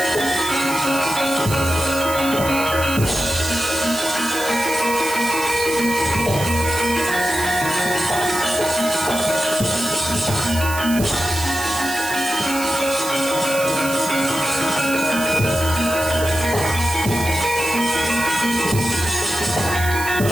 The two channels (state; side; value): noise; right; hiss, 8 dB below the sound